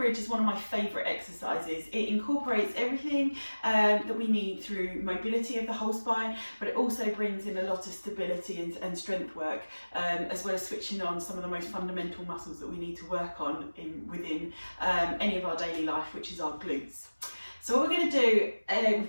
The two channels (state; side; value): inverted; both; correlation -1.00